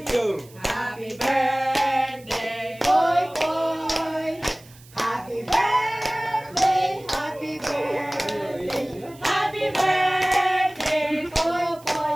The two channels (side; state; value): right; noise; hiss, 24 dB below the sound